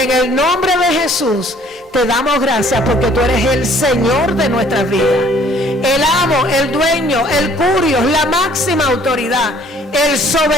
el nombre de Jesús te damos gracias, porque tú eres el Señor de nuestras vidas, el amo, el dueño, el curios, la máxima autoridad, el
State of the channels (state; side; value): normal; both; correlation 0.57